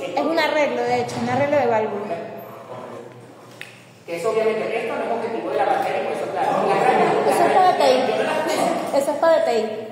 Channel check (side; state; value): both; identical; correlation 1.00